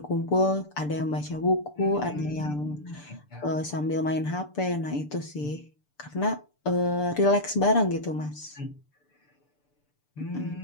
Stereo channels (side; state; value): right; late; 6.8 ms